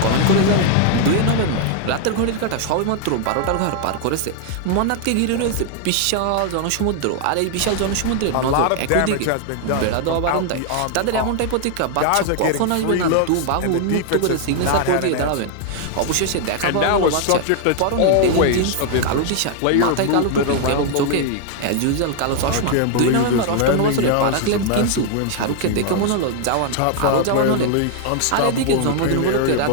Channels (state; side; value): different; both; correlation 0.00